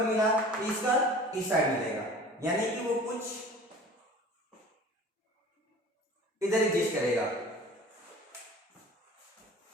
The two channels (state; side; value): normal; both; correlation 0.43